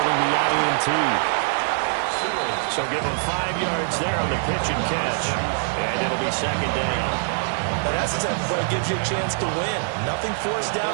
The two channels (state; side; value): silent; left; 63 dB below the other